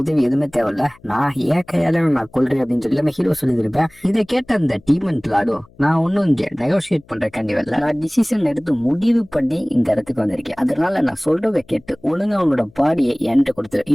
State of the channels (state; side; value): noise; left; hum, 29 dB below the sound